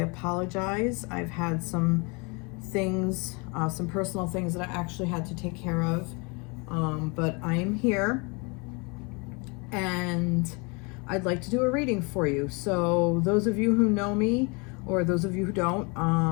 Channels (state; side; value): quieter; right; 30.6 dB